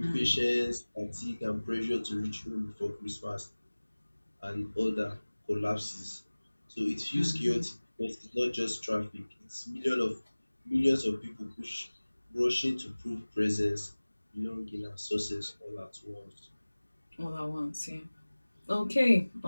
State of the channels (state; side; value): inverted; both; correlation -1.00